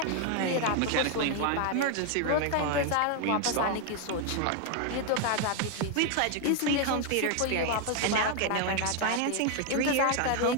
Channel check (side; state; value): both; different; correlation 0.00